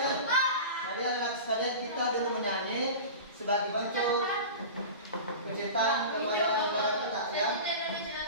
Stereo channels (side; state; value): both; inverted; correlation -0.32